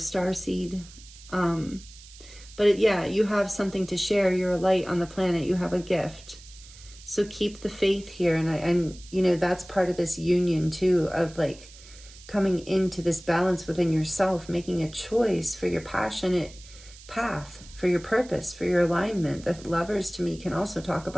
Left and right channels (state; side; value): noise; right; hiss, 20 dB below the sound